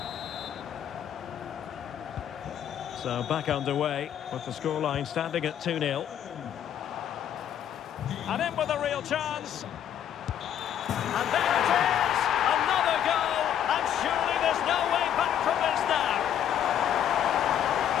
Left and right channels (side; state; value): right; quieter; 9.9 dB